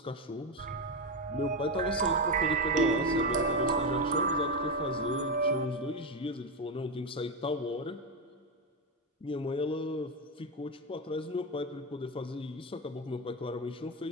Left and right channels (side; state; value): both; normal; correlation 0.11